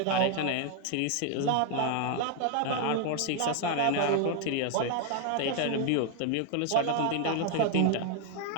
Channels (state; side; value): different; both; correlation 0.01